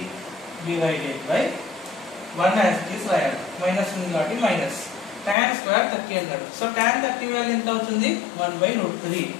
divided by 1 as it is రాయాలి, మైనస్ ఉంది కాబట్టి మైనస్. tan స్క్వేర్ 30 అన్నాడు. సో tan 30 వాల్యూ ఎంత అవుతుంది? 1/√3.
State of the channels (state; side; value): drops out; right; at 5.4 s